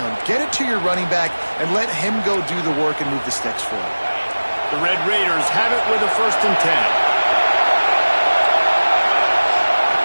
Get it to your running back and let him go do the work and move the sticks for it. The Red Raiders have it with a 1st and 10.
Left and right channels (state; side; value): inverted; both; correlation -1.00